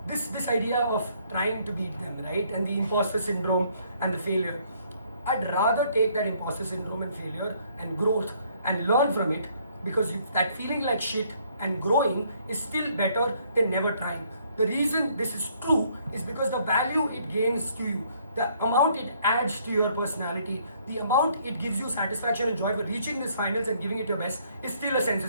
this idea of trying to beat them, right, and the imposter syndrome and the failure, I'd rather take that imposter syndrome and failure and growth and learn from it, because that feeling like shit and growing is still better than never trying. The reason this is true is because the value it gains to you, the amount it adds to your personality, the amount it gives you satisfaction and joy for reaching these finals and giving it your best is still a sense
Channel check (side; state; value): both; inverted; correlation -0.65